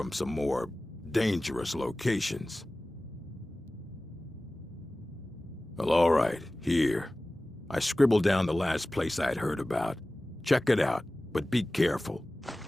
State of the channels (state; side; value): normal; both; correlation 0.97